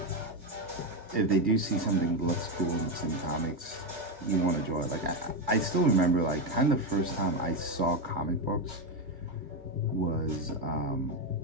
if they do see something that looks cool and it's in comics, you want to draw it. Like I still remember, like, kind of the first time I saw comic books was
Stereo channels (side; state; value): left; late; 2.5 ms